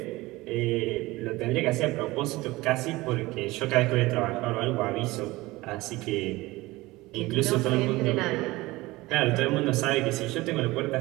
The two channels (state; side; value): quieter; left; 20.1 dB